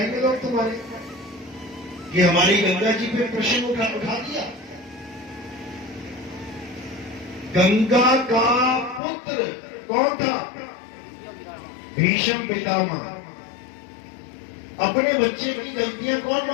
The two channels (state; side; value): drops out; right; at 9.0 s